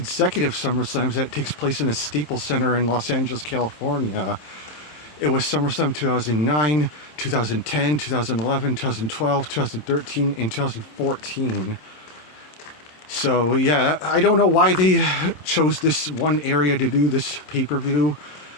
SummerSlams that takes place in a Staples Center in Los Angeles, California. It was SummerSlam 2009, 2010, 2011, 2012, 2013, and 2014. So yeah, I don't know why they chose this one area to do this pay-per-view.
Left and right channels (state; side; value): late; right; 27 ms